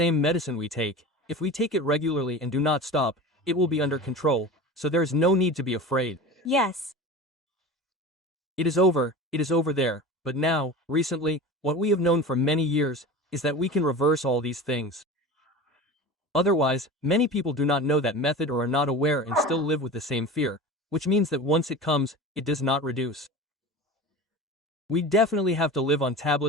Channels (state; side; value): normal; both; correlation 0.32